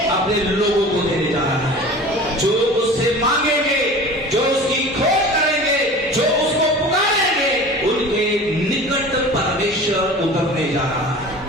अपने लोगों को देने जा रहा है। जो उससे मांगेंगे, जो उसकी खोज करेंगे, जो उसको पुकारेंगे, उनके निकट परमेश्वर उतरने जा रहा है।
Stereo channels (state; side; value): normal; both; correlation 0.39